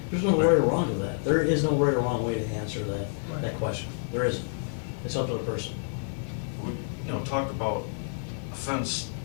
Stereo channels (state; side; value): silent; right; digital silence